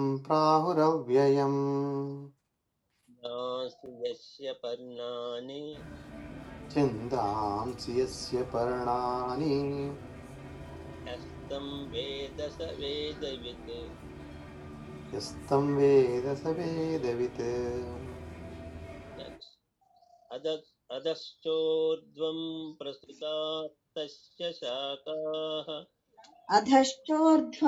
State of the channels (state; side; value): identical; both; correlation 1.00